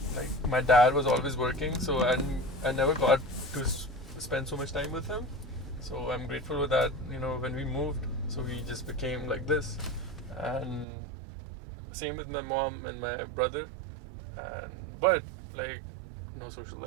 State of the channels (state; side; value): drops out; left; at 10.9 s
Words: like my dad was always working, so I never got to spend so much time with him. So I'm grateful with that. When we moved, so we just became like this, and same with my mom and my brother, but like no social